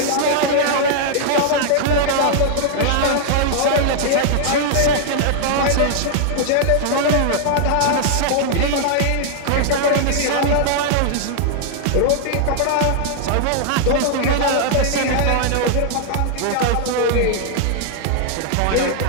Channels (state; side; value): different; both; correlation -0.01